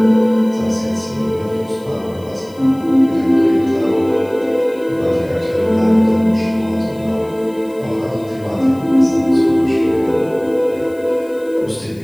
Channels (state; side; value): noise; left; hiss, 28 dB below the sound